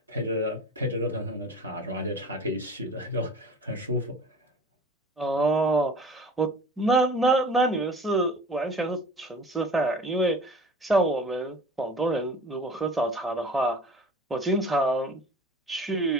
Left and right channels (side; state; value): both; normal; correlation 0.43